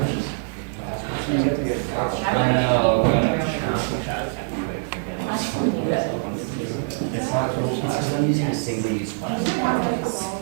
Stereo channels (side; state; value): left; silent; 63 dB below the other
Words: I'm using a single use plastic.